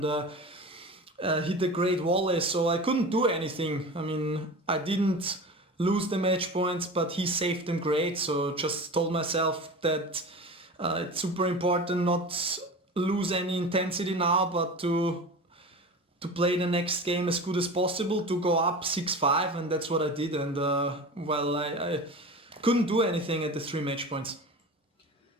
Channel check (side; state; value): both; normal; correlation 0.32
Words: hit a great volley. So I couldn't do anything. I mean, I didn't lose the match points, but he saved them great. So just told myself that it's super important not lose any intensity now, but to play the next game as good as possible, to go up 6-5, and that's what I did. And well, I couldn't do anything at the 3 match points.